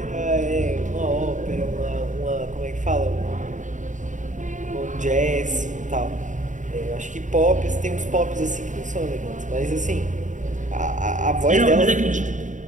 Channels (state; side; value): late; left; 0.36 ms